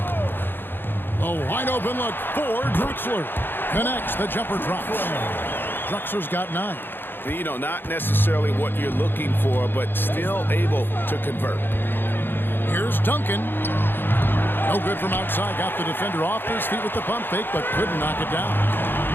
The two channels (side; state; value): right; late; 0.099 ms